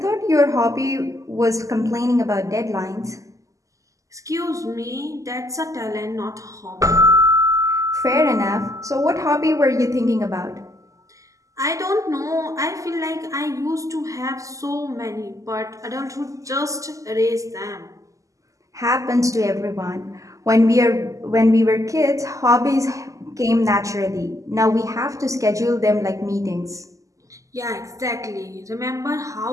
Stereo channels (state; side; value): late; left; 0.16 ms